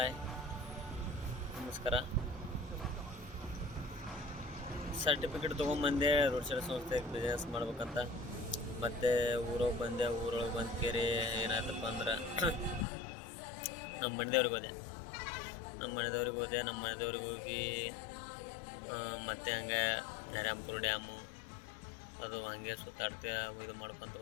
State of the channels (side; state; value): right; drops out; at 12.9 s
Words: ನಮಸ್ಕಾರ. Certificate ತೊಗೊಂಬಂದೆ road side ಸಂಸ್ಥೆಗೆ business ಮಾಡ್ಬೇಕಂತ. ಮತ್ತು ಊರೊಳಗೆ ಬಂದೆ. ಊರೊಳಗೆ ಬಂದು ಕೇರಿ ಏನಾಯ್ತಪ್ಪ ಅಂದ್ರೆ ನಮ್ಮ ಮನೆದೇವ್ರಿಗೆ ಹೋದೆ. ನಮ್ಮ ಮನೆದೇವ್ರಿಗೆ ಹೋಗಿ ಮತ್ತೆ ಹಂಗೆ ನರ್ಯಾಂಪುರ ಡ್ಯಾಮು ಅದು ಹಂಗೆ ಸುತ್ತಾಡ್ತಾ ಇದು ಮಾಡ್ಕೊತ